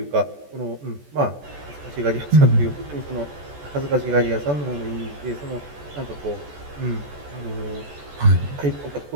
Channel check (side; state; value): left; late; 14 ms